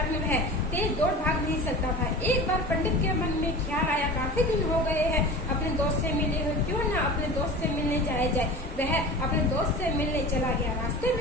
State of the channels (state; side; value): normal; both; correlation 0.35